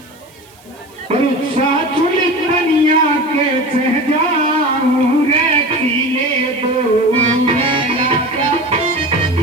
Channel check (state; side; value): noise; right; hiss, 28 dB below the sound